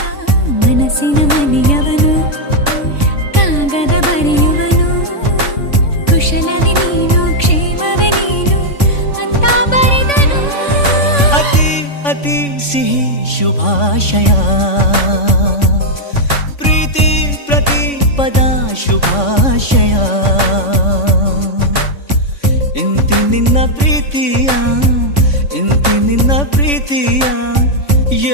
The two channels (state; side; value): late; right; 3.5 ms